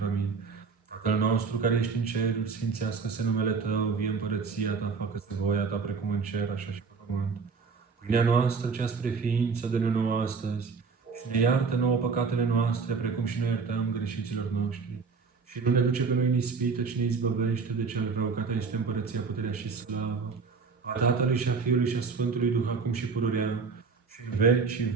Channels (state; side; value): quieter; left; 5.0 dB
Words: Amin. Tatăl nostru care ești în ceruri, sfințească-se numele Tău, vie împărăția Ta, facă-se voia Ta precum în cer, așa și pe pământ. Pâinea noastră, cea spre ființă, dă-ne nouă astăzi și ne iartă nouă păcatele noastre, precum și noi iertăm greșiților noștri. Și nu ne duce pe noi în ispită, ci ne izbăvește de cel rău, că Ta este împărăția, puterea și slavă a Tatălui și a Fiului și a Sfântului Duh, acum și pururea și în vecii